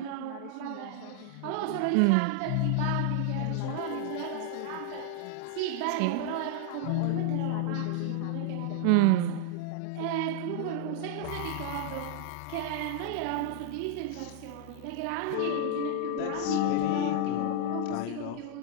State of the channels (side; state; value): both; different; correlation 0.00